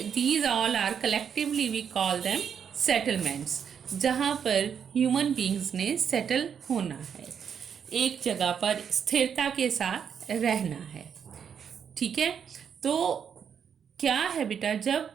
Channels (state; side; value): quieter; left; 7.6 dB